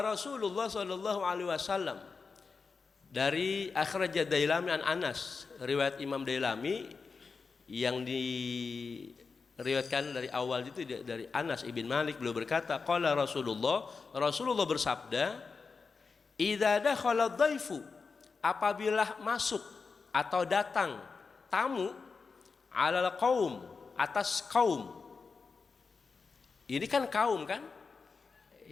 Rasulullah sallallahu alaihi wasallam, dari akhraj Dailami an Anas, riwayat Imam Dailami yang diriwayatkan dari awal itu dari Anas ibn Malik, beliau berkata, qala Rasulullah bersabda, idza dakhala dhaifu, apabila masuk atau datang tamu, alal qaum, atas kaum. Ini kan kaum kan?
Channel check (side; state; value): right; quieter; 4.8 dB